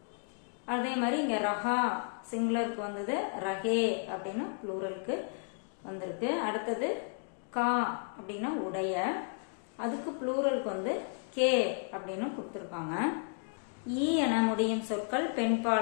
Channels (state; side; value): silent; right; 56 dB below the other